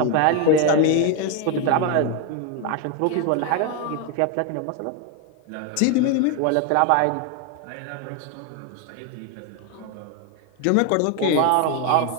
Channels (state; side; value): different; both; correlation 0.01